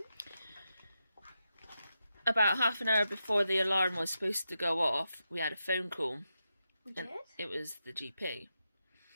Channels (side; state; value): both; inverted; correlation -0.87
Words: About half an hour before the alarm was supposed to go off, we had a phone call. We And did? it was the GP.